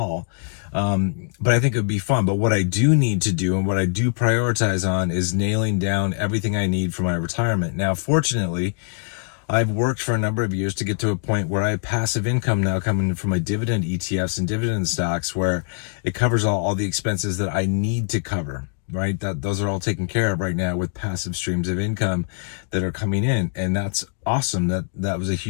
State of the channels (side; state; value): right; silent; digital silence